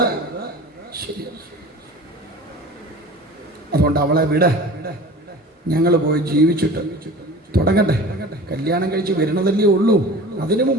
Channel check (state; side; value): normal; both; correlation 0.39